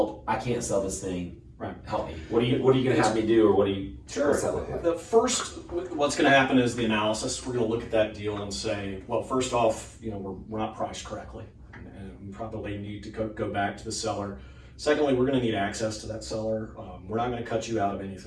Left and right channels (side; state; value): both; identical; correlation 1.00